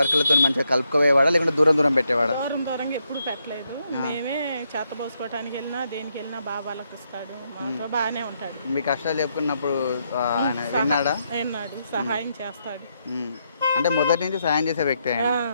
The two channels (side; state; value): both; inverted; correlation -0.79